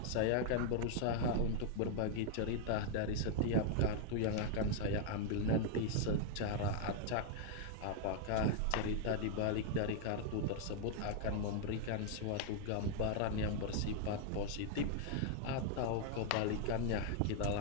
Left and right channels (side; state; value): both; different; correlation 0.00